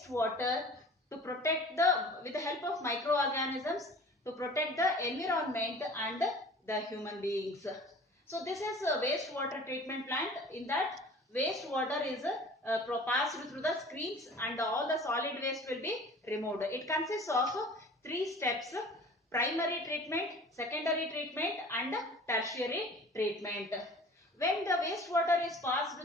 water to protect with the help of microorganisms to protect the environment and the human beings. So this is a wastewater treatment plant. In that, wastewater is passed through the screens and all the solid waste will be removed. It consists of three steps: primary treatment, secondary treatment and tertiary treatment. When the wastewater is passed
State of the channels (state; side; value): normal; both; correlation 0.44